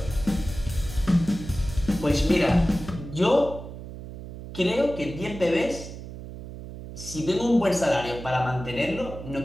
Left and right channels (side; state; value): right; noise; hum, 11 dB below the sound